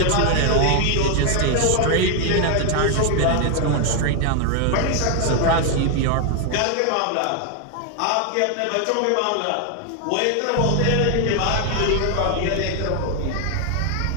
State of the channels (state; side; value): different; both; correlation 0.00